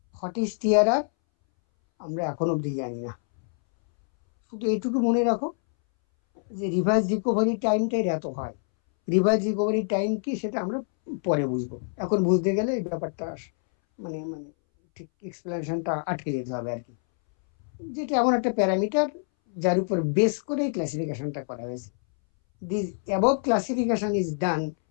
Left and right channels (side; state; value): right; silent; 61 dB below the other